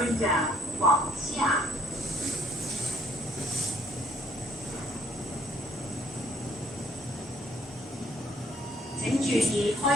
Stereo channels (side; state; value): both; normal; correlation 0.63